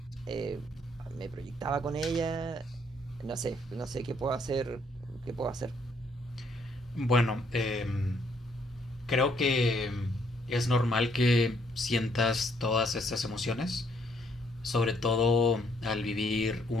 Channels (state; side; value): normal; both; correlation 0.69